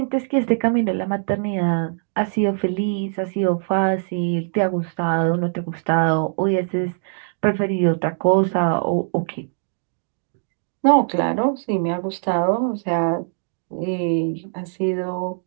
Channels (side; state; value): left; silent; digital silence